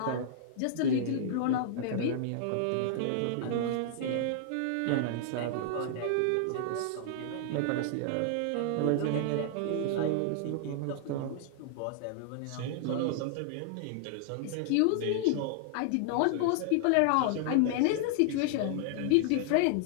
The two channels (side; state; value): both; different; correlation -0.01